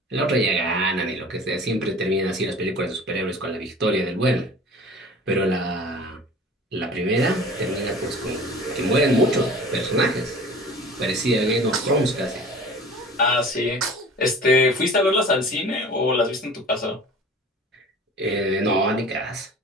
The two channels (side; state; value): both; normal; correlation 0.43